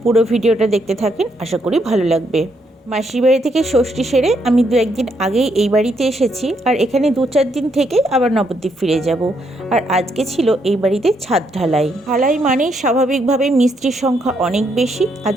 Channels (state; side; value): normal; both; correlation 0.75